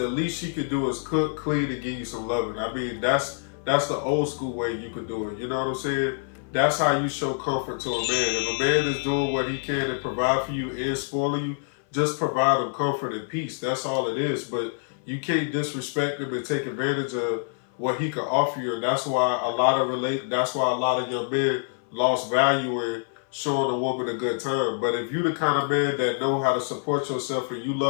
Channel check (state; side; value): silent; right; 58 dB below the other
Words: least she could do is cook, clean, and give you some loving. I mean, that's that's the old school way you could do it. You know what I'm saying? That's how you show comfort to a man. If a man is doing what he can to provide for you and spoiling you, just provide him comfort and peace. That's all it is. But you can't disrespect him and take advantage of what he can offer you. And that's why a lot of young men lost value in showing a woman a good time. But if you the kind of man that know how to support yourself and you